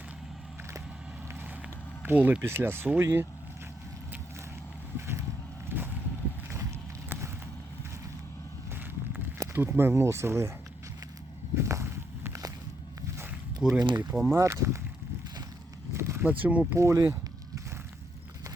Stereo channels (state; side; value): normal; both; correlation 0.77